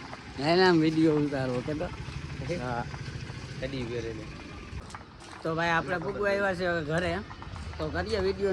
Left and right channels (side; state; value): both; identical; correlation 1.00